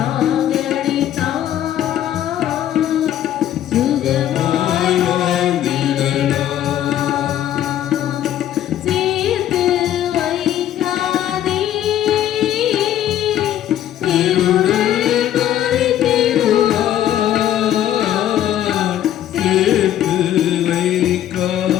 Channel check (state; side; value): quieter; right; 11.6 dB